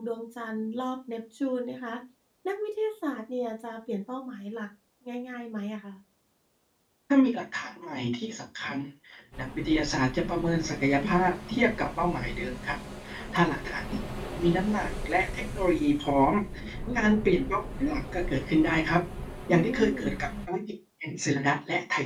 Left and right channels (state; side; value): identical; both; correlation 1.00